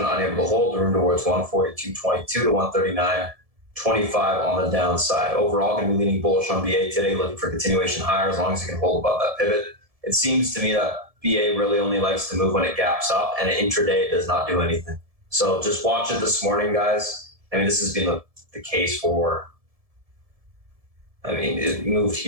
unable to hold, room towards 142.22 to 139.25 on the downside. Overall, going to be leaning bullish on BA today, looking for continuation higher as long as it can hold above that pivot. It seems to me that BA really only likes to move when it gaps up, and intraday it does not do anything. So just watch it this morning, guys. I mean, this has been the case for, it moved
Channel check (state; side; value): late; left; 1.7 ms